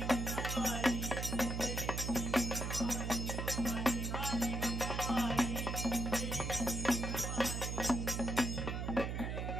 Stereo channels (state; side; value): noise; right; hum, 2 dB below the sound